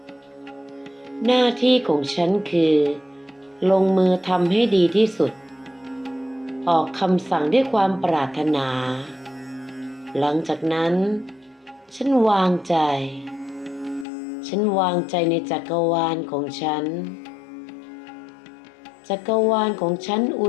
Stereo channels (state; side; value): drops out; right; at 14.1 s